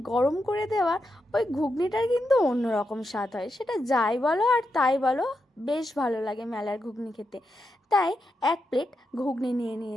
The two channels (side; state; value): both; normal; correlation 0.85